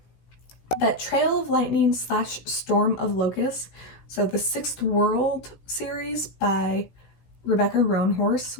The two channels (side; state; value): right; late; 16 ms